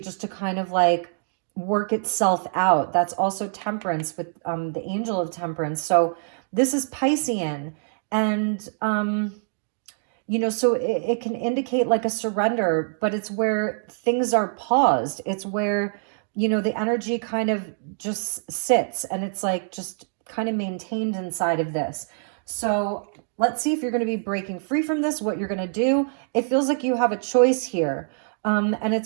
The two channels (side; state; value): left; silent; digital silence